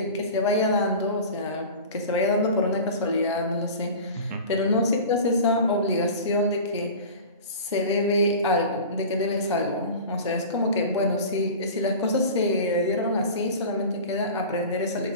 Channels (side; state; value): both; inverted; correlation -0.35